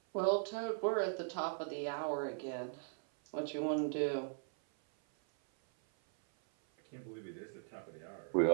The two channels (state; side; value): silent; left; 52 dB below the other